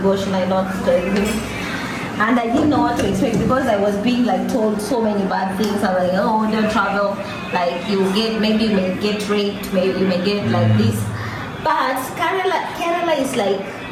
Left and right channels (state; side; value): identical; both; correlation 1.00